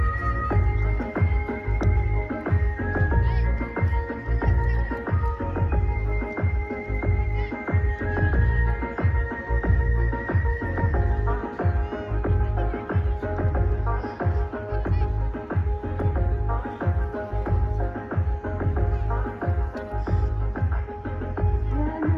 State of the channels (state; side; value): identical; both; correlation 1.00